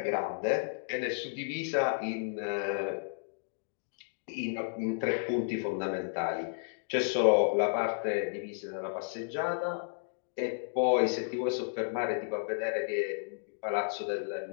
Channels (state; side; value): silent; right; digital silence